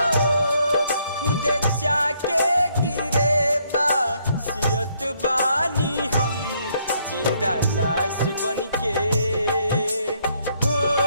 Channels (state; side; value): inverted; both; correlation -0.70